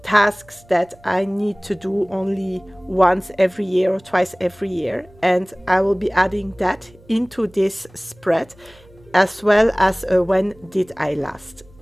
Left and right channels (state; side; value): noise; right; hum, 26 dB below the sound